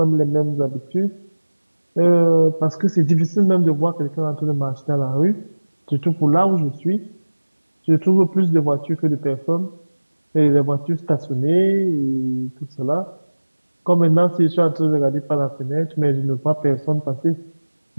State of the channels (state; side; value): inverted; both; correlation -1.00